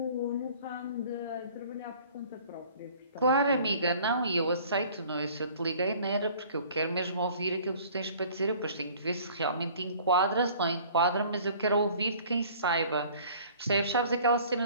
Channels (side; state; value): both; inverted; correlation -0.51